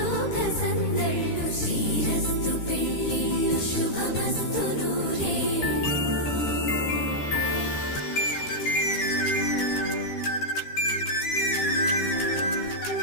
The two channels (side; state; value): right; late; 13 ms